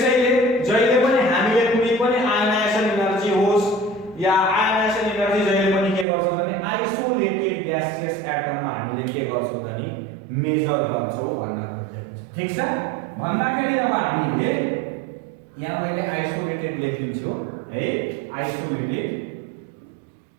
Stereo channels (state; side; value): drops out; left; at 6.1 s